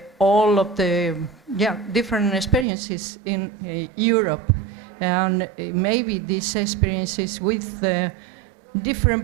all of the different experiences in Europe, and maybe these experiences with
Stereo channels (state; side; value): drops out; left; at 2.7 s